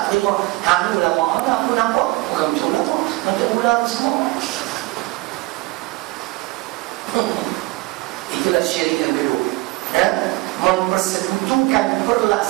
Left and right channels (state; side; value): quieter; left; 21.8 dB